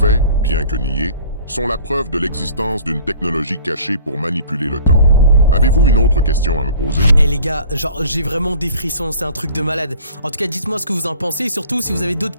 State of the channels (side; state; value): both; inverted; correlation -0.49